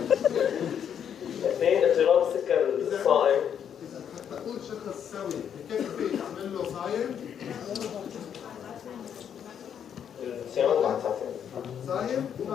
اثنين اضطراب السكر الصائم. إذا حتى أقول شخص سوي كيف فيك أعمل له صايم؟ صيامات بعد ساعتين. صايم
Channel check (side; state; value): right; quieter; 8.5 dB